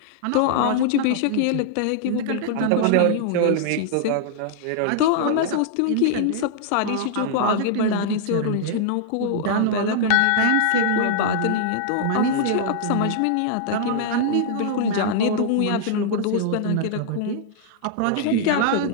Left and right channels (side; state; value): both; different; correlation -0.01